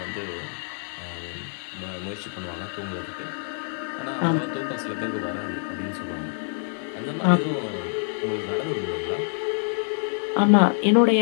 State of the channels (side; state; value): right; silent; digital silence